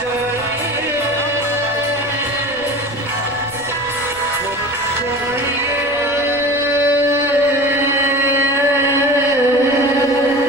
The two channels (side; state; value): left; noise; rumble, 24 dB below the sound